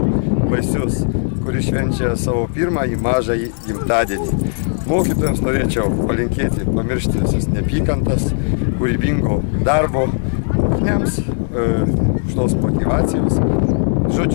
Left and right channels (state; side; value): silent; right; digital silence